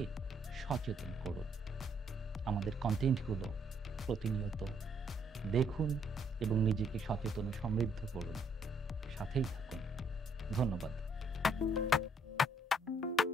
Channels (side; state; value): both; normal; correlation 0.69